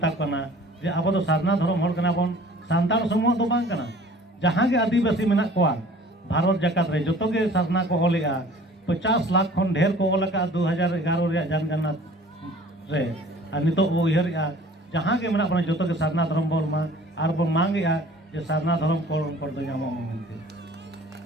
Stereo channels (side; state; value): both; normal; correlation 0.49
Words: कना जे अब तो सारना धर्म होल कना बन सांताल समूह दो बांग कना जहां के आदिवासी मेना कोआ भारत जकात रे जतो के सारना को ओलेगा 50 लाख खन ढेर को ओलका 2011 रे जनगणना रे और नितो ओ इहर जहां के मेना बन जतो के सारना धर्म बोल मा और बन मांगेगा जे सारना धर्म को दो नामो मेनते